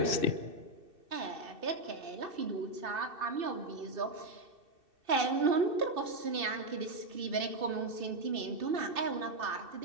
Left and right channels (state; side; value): late; left; 2.6 ms